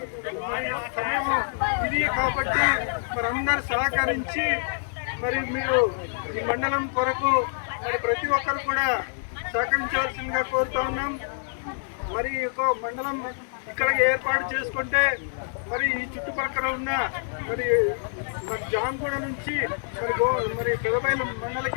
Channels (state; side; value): silent; right; 61 dB below the other